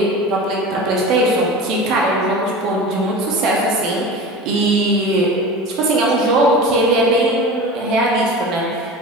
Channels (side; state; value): both; normal; correlation 0.32